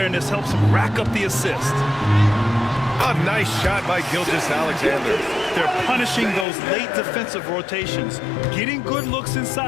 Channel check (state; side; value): drops out; right; at 6.5 s